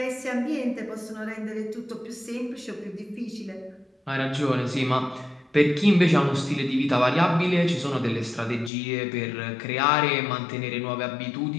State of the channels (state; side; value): drops out; right; at 8.7 s